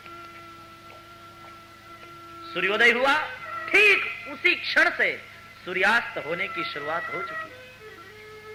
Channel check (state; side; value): identical; both; correlation 1.00